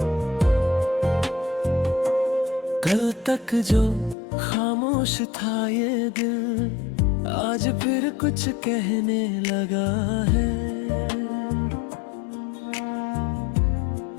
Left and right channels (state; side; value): drops out; right; at 4.2 s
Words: कल तक जो खामोश था ये दिल, आज फिर कुछ कहने लगा है।